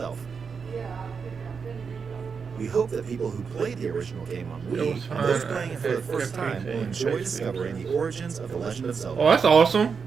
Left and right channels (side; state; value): left; quieter; 5.8 dB